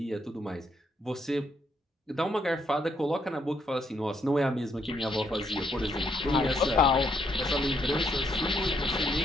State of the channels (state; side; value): normal; both; correlation 0.74